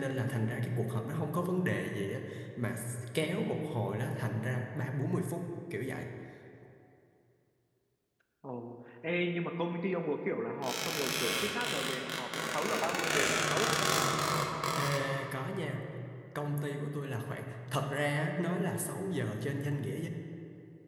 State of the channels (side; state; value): both; identical; correlation 1.00